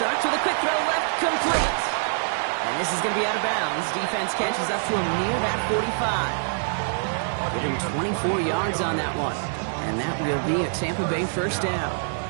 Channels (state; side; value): silent; left; digital silence